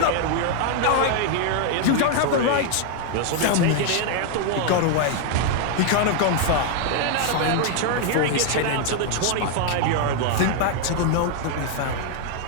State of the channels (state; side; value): different; both; correlation 0.00